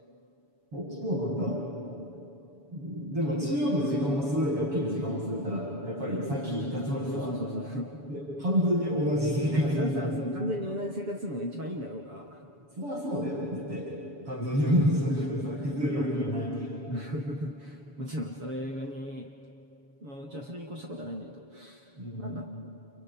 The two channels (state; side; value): late; left; 7.1 ms